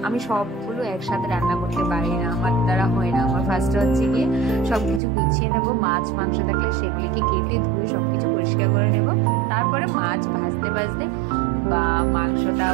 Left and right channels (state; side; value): drops out; left; at 5.0 s